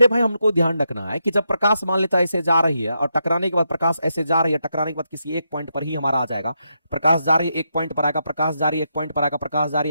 भाई हमको ध्यान रखना है कि जब प्रकाश मान लेता है ऐसे जा रही है और टकराने के बाद प्रकाश ऐसे जा रही है, टकराने के बाद किसी एक पॉइंट पर ही हमारा आ जाएगा, प्रकाश जा रही है एक पॉइंट पर आएगा, प्रकाश जा रही है एक पॉइंट पर आएगा, प्रकाश जा रही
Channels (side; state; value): both; inverted; correlation -0.83